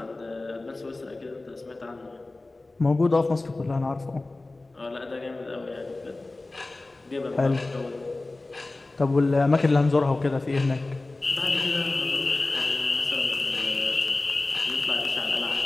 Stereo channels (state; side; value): quieter; right; 3.1 dB